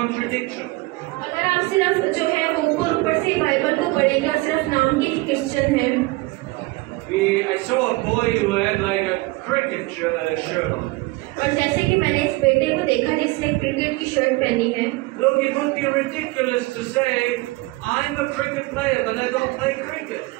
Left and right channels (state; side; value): quieter; left; 22.5 dB